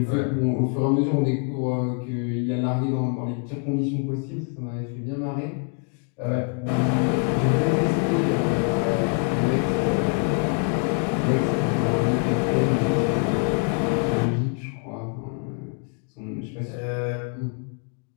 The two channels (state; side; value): quieter; right; 39.8 dB